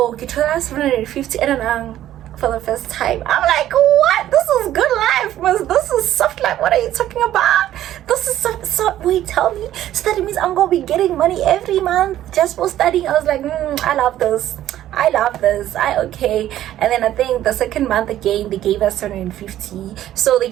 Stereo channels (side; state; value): left; quieter; 12.7 dB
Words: get 750 and for the first time, I'm like, what? This is good life, man. This is soft life. What are you talking about? This is so wait, tell me. So that means I'm gonna be getting money every month just for studying. I was like, I love this. Okay. And then I think the second month again they gave us 750. So they